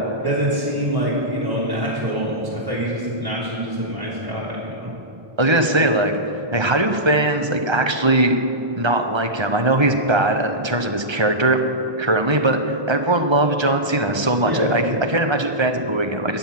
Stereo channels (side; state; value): left; late; 1.3 ms